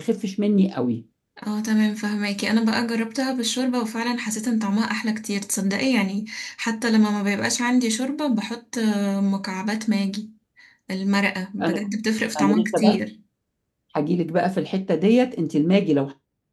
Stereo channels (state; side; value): identical; both; correlation 1.00